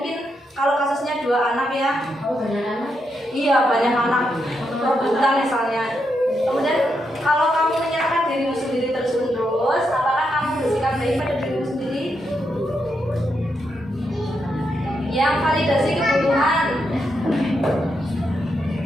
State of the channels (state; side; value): normal; both; correlation 0.82